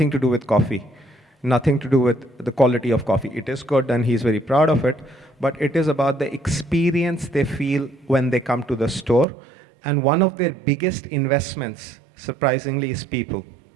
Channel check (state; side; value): drops out; left; at 9.2 s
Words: to do with coffee, nothing to do with the quality of coffee. It is good and he's very proud of it, but it is about the experience they feel when they come to the store. And one of their biggest investments, surprisingly, is people.